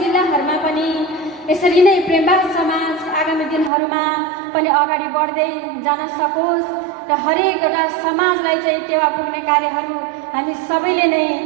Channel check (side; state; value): left; drops out; at 3.7 s